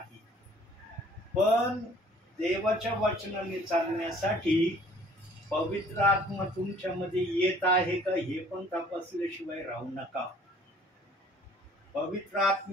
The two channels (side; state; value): both; normal; correlation 0.55